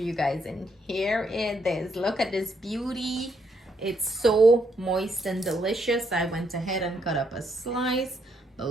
guys, and here it is. Look at this beauty. It's so moist and delicious. I went ahead and cut up a slice, but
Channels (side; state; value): both; normal; correlation 0.74